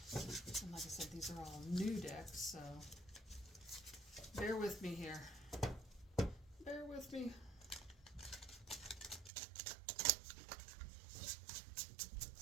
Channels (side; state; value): left; drops out; at 9.3 s